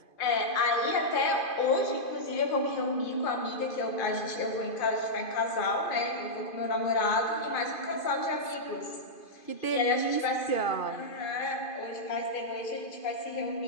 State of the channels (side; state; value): right; late; 2.5 ms